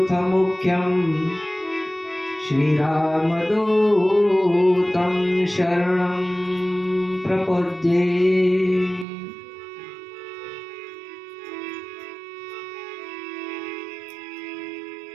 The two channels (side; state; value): left; drops out; at 9.1 s